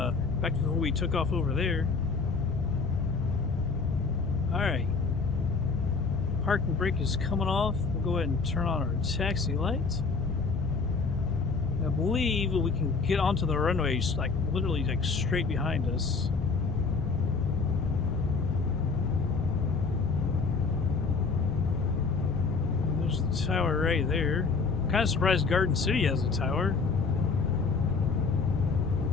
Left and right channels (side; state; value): right; quieter; 4.6 dB